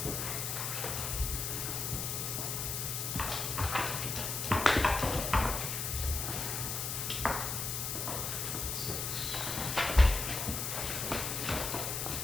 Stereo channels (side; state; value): left; noise; hiss, 2 dB below the sound